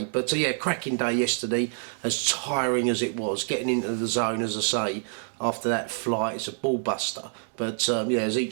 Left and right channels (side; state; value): left; silent; digital silence